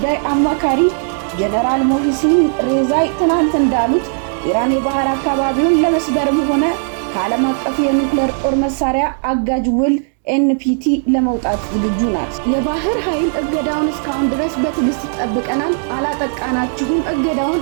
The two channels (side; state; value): left; silent; digital silence